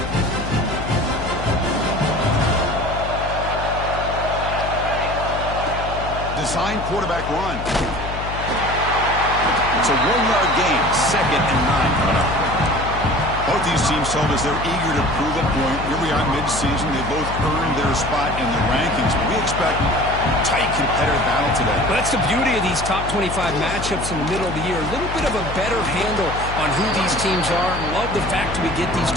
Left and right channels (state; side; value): noise; left; hum, 7 dB below the sound